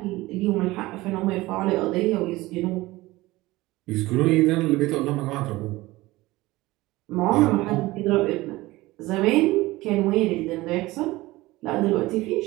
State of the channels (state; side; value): quieter; left; 19.3 dB